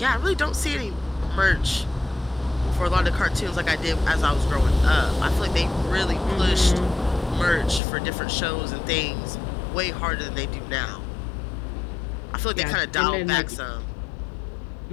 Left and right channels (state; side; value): drops out; right; at 7.8 s